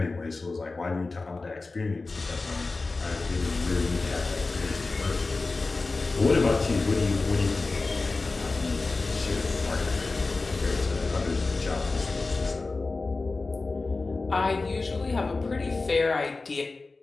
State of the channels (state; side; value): quieter; right; 3.6 dB